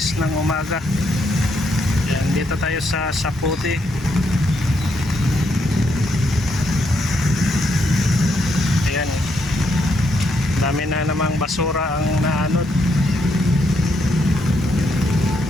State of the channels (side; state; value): both; normal; correlation 0.77